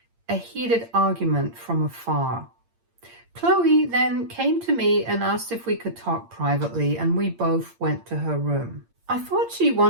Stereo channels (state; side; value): late; left; 8.7 ms